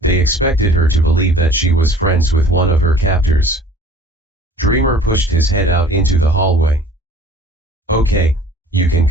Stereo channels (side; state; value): both; normal; correlation 0.49